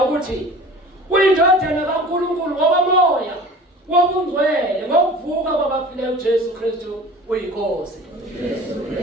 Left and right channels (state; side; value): normal; both; correlation 0.41